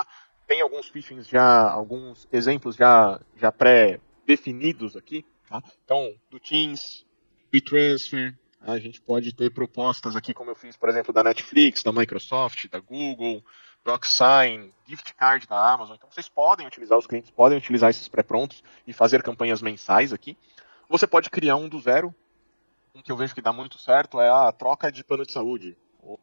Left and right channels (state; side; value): inverted; both; correlation -1.00